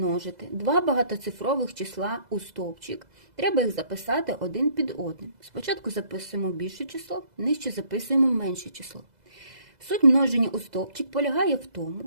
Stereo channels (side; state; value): left; late; 2.0 ms